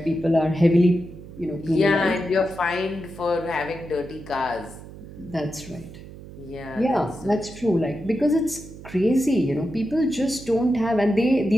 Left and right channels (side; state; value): right; noise; hum, 16 dB below the sound